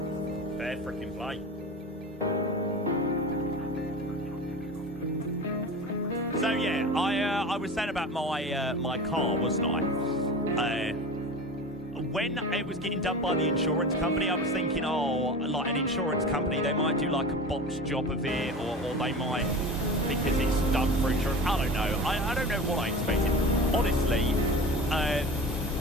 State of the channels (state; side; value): normal; both; correlation 0.32